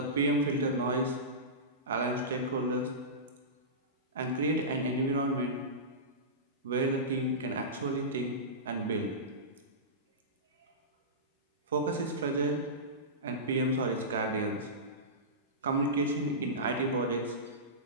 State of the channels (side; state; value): both; normal; correlation -0.19